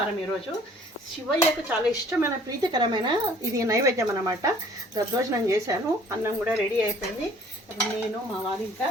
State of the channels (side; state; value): both; normal; correlation 0.55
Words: ఈరోజు శివయ్యకు చాలా ఇష్టమైన ప్రీతికరమైన ఇది నైవేద్యం అన్నమాట. దద్దోజనం చేశాను. అన్నం కూడా రెడీ అయిపోయింది. నేను మా వారు ఇంకా